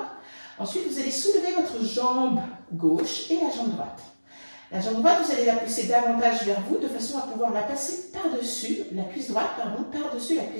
? Ensuite, vous allez soulever votre jambe gauche et la jambe droite. La jambe droite, vous allez la pousser davantage vers vous de façon à pouvoir la passer par-dessus, la cuisse droite, pardon, par-dessus la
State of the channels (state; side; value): inverted; both; correlation -1.00